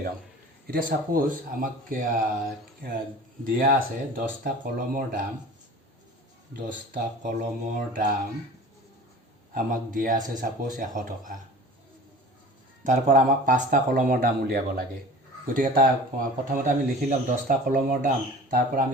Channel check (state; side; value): normal; both; correlation 0.40